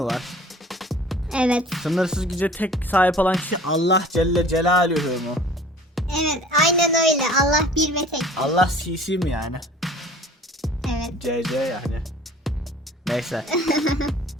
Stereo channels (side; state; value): both; normal; correlation 0.47